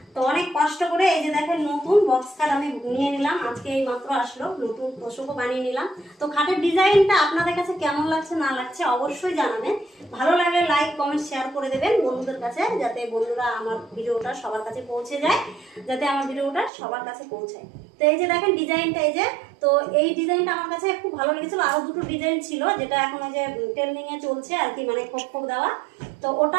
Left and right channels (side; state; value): left; drops out; at 16.7 s